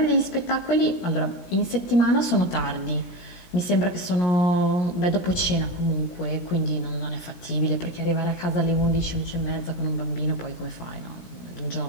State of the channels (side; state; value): right; late; 17 ms